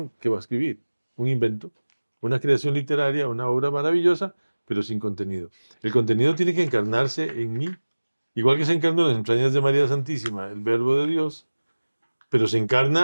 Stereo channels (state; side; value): inverted; both; correlation -1.00